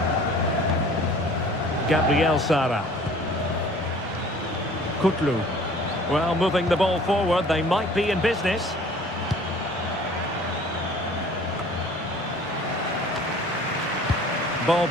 Gabriel Sara. Kutlu. Well, moving the ball forward, they might be in business. Ball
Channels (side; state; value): both; normal; correlation 0.50